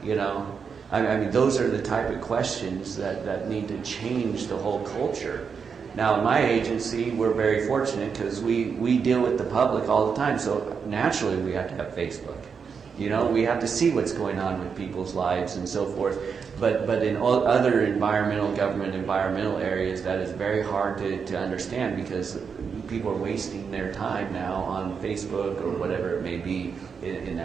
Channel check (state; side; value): quieter; left; 6.1 dB